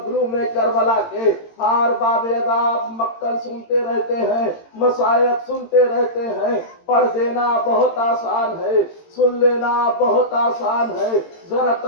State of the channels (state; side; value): late; right; 18 ms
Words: کربلا کے۔ ہار باب عذاب مقتل سنتے رہتے ہیں، مصائب سنتے رہتے ہیں۔ پڑھ دینا بہت آسان ہے، سن لینا بہت آسان ہے۔ ذرا